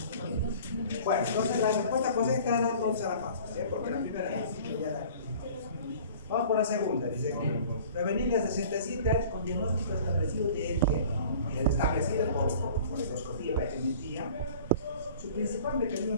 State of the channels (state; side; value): inverted; both; correlation -0.46